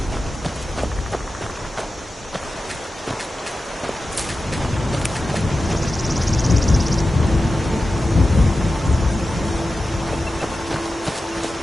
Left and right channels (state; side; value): normal; both; correlation 0.93